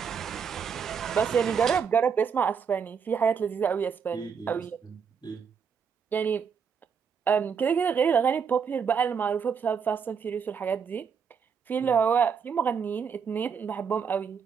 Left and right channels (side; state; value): left; quieter; 6.6 dB